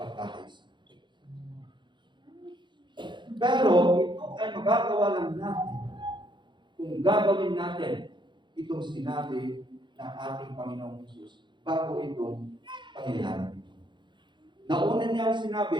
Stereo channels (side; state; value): left; late; 0.23 ms